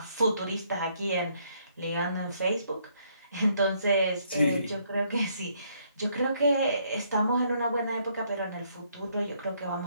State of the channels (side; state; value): both; inverted; correlation -0.70